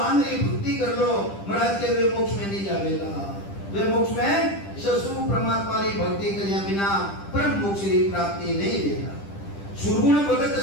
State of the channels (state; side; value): late; right; 10 ms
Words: भक्ति कर लो महाराज के वे मोक्ष में नहीं जावेला वे मोक्ष में ससुर परमात्मा की भक्ति करिया बिना परम मोक्ष की प्राप्ति नहीं देगा सुरगुण भगत